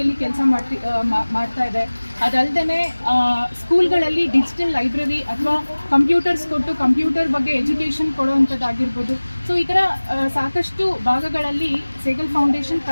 ಕೆಲಸ ಮಾಡ್ತಾ ಇದೆ. ಅದಲ್ಲದೆ ಸ್ಕೂಲ್ಗಳಲ್ಲಿ ಡಿಜಿಟಲ್ ಲೈಬ್ರರಿ ಅಥವಾ ಕಂಪ್ಯೂಟರ್ಸ್ ಕೊಟ್ಟು ಕಂಪ್ಯೂಟರ್ ಬಗ್ಗೆ ಎಜುಕೇಷನ್ ಕೊಡುವಂಥದ್ದಾಗಿರ್ಬೋದು. ಸೊ ಈ ಥರ ಸಾಕಷ್ಟು ಭಾಗಗಳಲ್ಲಿ ಸೇಗಲ್ ಫೌಂಡೇಶನ್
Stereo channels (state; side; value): inverted; both; correlation -1.00